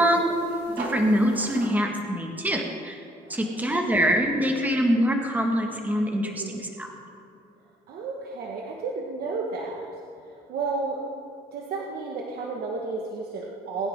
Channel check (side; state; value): both; normal; correlation 0.65